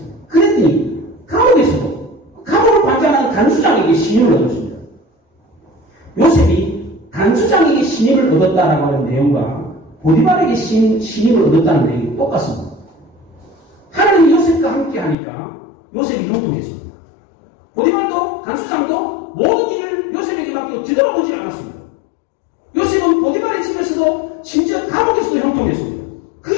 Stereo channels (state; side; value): drops out; right; at 15.2 s